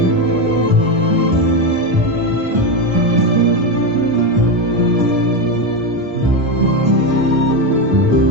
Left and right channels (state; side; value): late; left; 1.2 ms